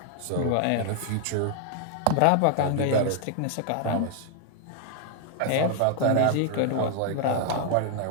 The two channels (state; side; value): different; both; correlation 0.00